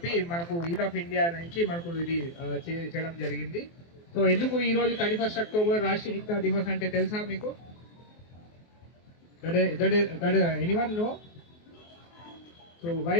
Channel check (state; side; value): late; right; 24 ms